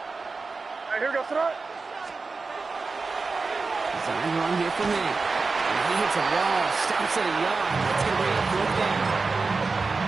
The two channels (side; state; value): left; quieter; 4.1 dB